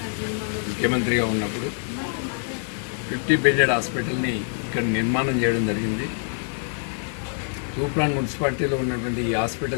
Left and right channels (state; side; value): silent; right; 62 dB below the other